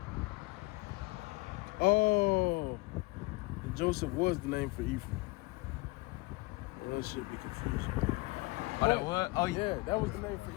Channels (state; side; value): quieter; right; 23.9 dB